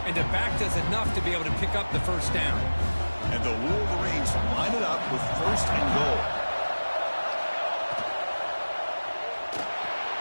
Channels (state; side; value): inverted; both; correlation -1.00